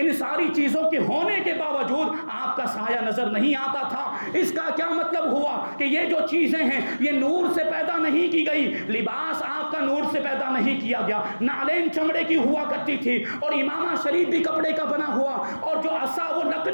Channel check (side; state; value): both; inverted; correlation -1.00